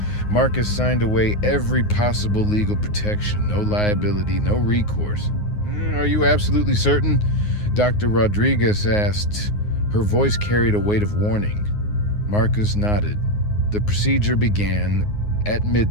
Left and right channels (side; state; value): right; late; 9.6 ms